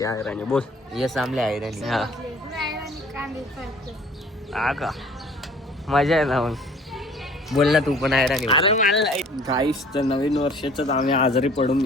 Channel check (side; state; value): both; normal; correlation 0.51